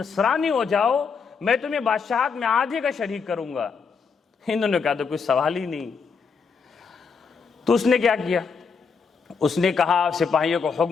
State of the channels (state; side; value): quieter; right; 5.6 dB